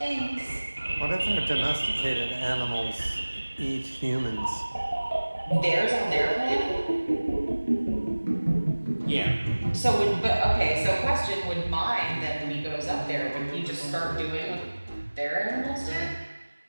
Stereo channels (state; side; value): inverted; both; correlation -1.00